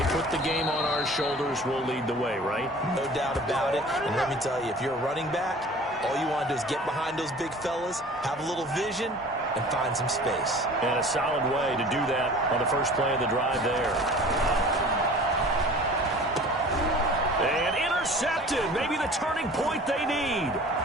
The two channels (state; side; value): normal; both; correlation 0.44